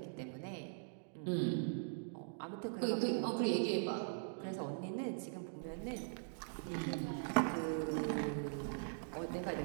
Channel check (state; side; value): silent; left; digital silence